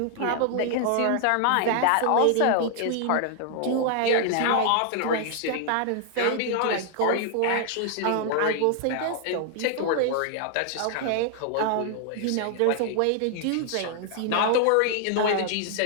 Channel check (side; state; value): both; different; correlation 0.00